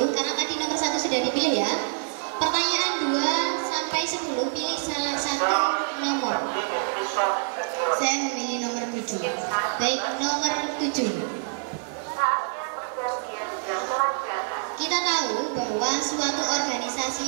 karena tadi nomor 1 sudah dipilih ya. Pertanyaan 2 sampai 10, pilih salah satu nomor. Saya memilih nomor 7. Baik, nomor 7. Kita tahu bahwa suatu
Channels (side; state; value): left; silent; digital silence